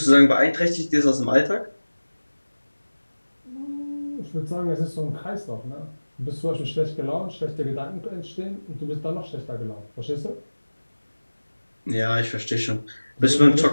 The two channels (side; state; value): both; inverted; correlation -1.00